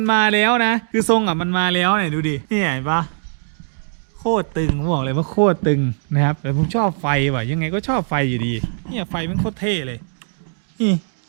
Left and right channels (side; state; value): left; silent; digital silence